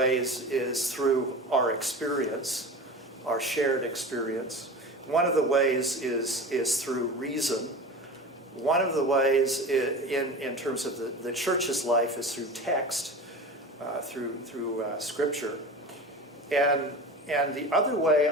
is through our experience, our shared experience. One of the ways is through reason. One of the ways in terms of the church's life is through text, through scripture. And the other way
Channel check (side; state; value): both; normal; correlation 0.32